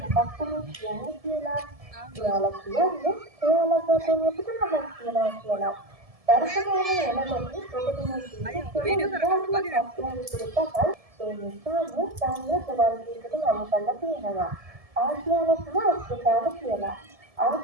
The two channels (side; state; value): left; late; 1.7 ms